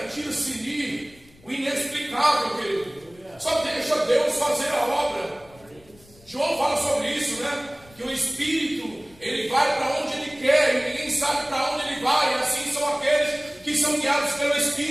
tira-se o inexplicável, querido. Só deixa Deus fazer a obra. João fala sobre isso, né? Que o Espírito, ele vai para onde ele quer e ninguém sabe para onde ele vai. E assim são aqueles que são guiados pelo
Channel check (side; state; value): left; noise; rumble, 27 dB below the sound